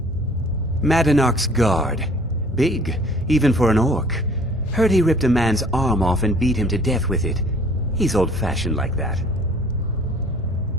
Madanach's guard. Big, even for an orc. Heard he ripped a man's arm off and beat him to death with it. He's old-fashioned like that.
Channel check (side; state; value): both; normal; correlation 0.53